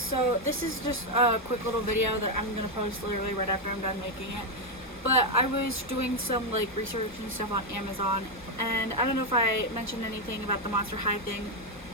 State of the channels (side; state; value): both; normal; correlation 0.03